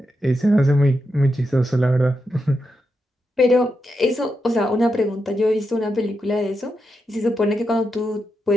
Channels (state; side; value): normal; both; correlation 0.86